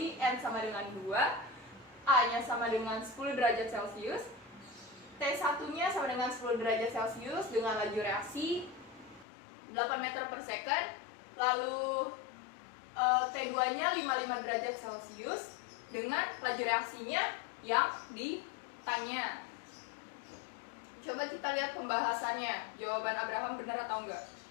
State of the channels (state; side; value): drops out; right; at 9.2 s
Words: N sama dengan 2, A-nya sama dengan 10 derajat Celcius, T1-nya sama dengan 10 derajat Celcius dengan laju reaksi 8 meter per second, lalu T2-nya 55 derajat Celcius dengan laju reaksinya yang ditanya. Coba kita lihat pembahasannya. Jawaban Abraham benar atau enggak?